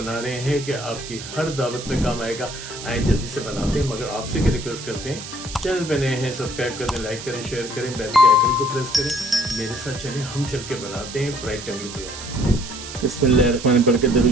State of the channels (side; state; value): right; noise; hiss, 11 dB below the sound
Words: रहे हैं कि आपकी हर दावत में काम आएगा। आए जल्दी से बनाते हैं, मगर आपसे क्या रिक्वेस्ट करते हैं, चैनल पे नए हैं सब्सक्राइब कर दें, लाइक करें, शेयर करें, बेल के आइकन को प्रेस करें। मेरे साथ चलें, हम चल के बनाते हैं फ्राइड टंगड़ी पुलाव। बिस्मिल्लाहिर्रहमानिर्रहीम पढ़ के दरूद